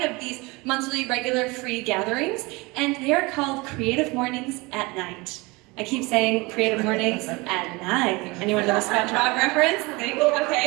of these monthly regular free gatherings, and they are called Creative Mornings at Night. I keep saying Creative Mornings at night. Anyone know the SpongeBob reference?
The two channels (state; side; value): quieter; left; 24.5 dB